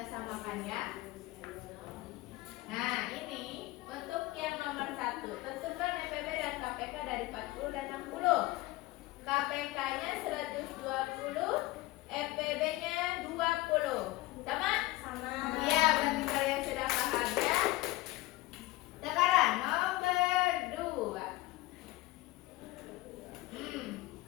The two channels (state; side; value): quieter; right; 19.4 dB